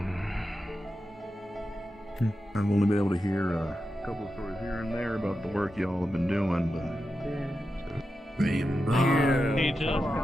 I've only been able to hear a couple of stories here and there about the work y'all have been doing, but...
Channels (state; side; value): normal; both; correlation 0.90